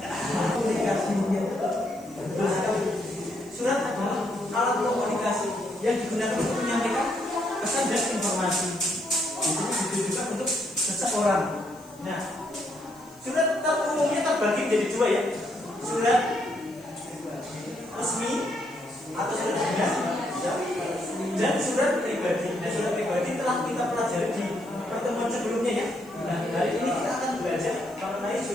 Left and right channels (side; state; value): left; noise; hiss, 26 dB below the sound